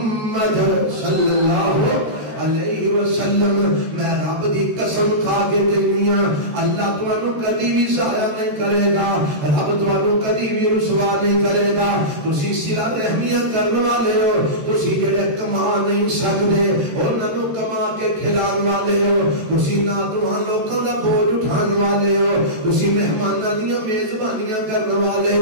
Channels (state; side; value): late; left; 13 ms